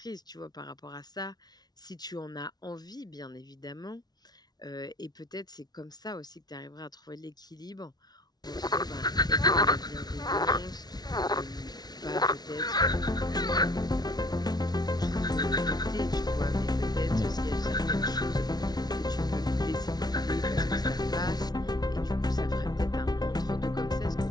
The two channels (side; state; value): right; late; 0.19 ms